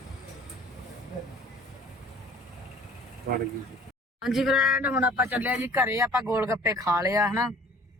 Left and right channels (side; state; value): both; normal; correlation 0.50